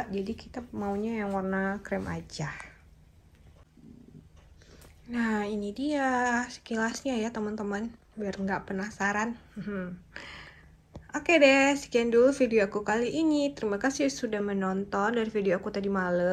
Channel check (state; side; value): identical; both; correlation 1.00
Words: jadi kita maunya yang warna krem aja. Nah ini dia sekilasnya ya teman-teman, biar nggak penasaran. Oke deh, sekian dulu video aku kali ini. Terima kasih sudah menonton dari video aku tadi